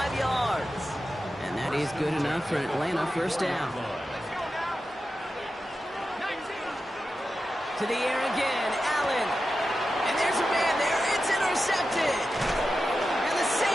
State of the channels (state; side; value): normal; both; correlation 0.91